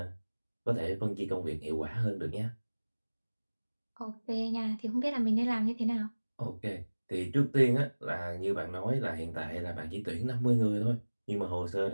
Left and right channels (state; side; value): inverted; both; correlation -1.00